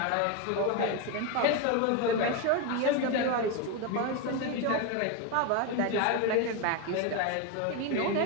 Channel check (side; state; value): both; different; correlation 0.03